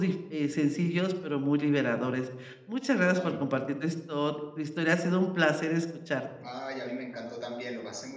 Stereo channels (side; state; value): both; identical; correlation 1.00